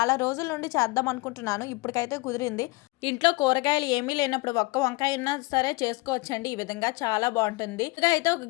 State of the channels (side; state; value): right; quieter; 24.0 dB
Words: రోజుల నుండి చేద్దాం అనుకుంటున్నాను. ఇప్పటికైతే కుదిరింది. ఇంట్లో కూరగాయలు ఏమీ లేనప్పుడు ఒక్క వంకాయ ఉన్నా సరే చేసుకోవచ్చండి. ఈ విధంగా చాలా బాగుంటుంది. ఇక అయితే ఒక